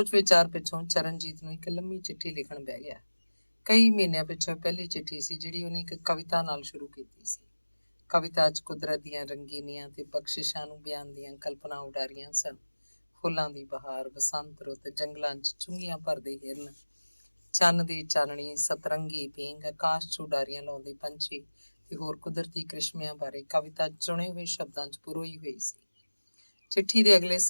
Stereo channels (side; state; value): both; inverted; correlation -1.00